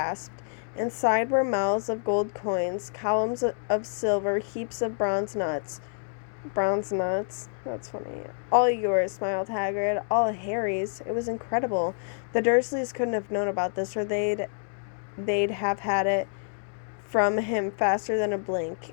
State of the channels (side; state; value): right; silent; digital silence